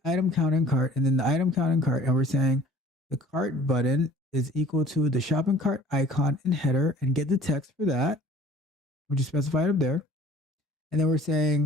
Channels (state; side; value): normal; both; correlation 0.50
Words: item count in cart, and then the item count in cart, and we're saying the cart button is equal to the shopping cart icon in header, and get the text for that, which is specified up there. And then we're